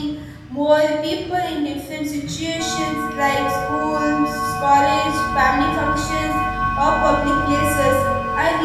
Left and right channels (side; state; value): both; identical; correlation 1.00